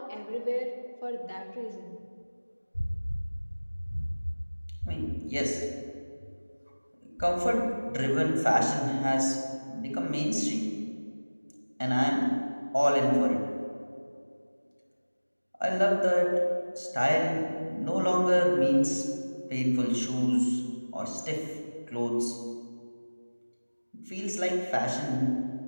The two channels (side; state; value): both; inverted; correlation -1.00